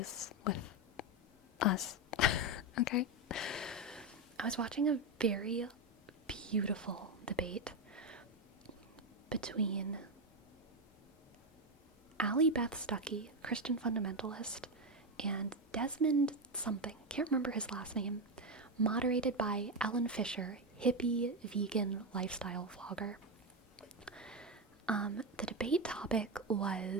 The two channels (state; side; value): normal; both; correlation 0.10